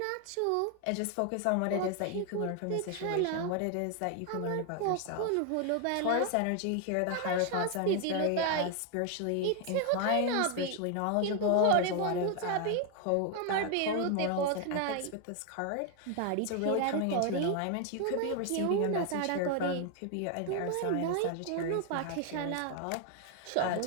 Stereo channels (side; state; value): both; different; correlation 0.01